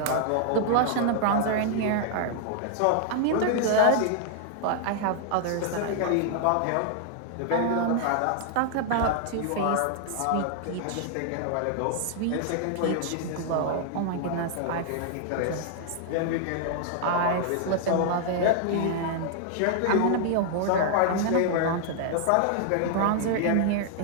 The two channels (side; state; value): both; different; correlation 0.00